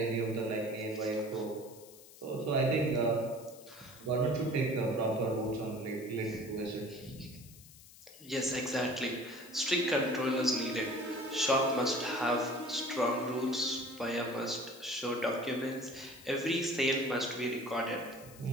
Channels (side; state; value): left; noise; hiss, 20 dB below the sound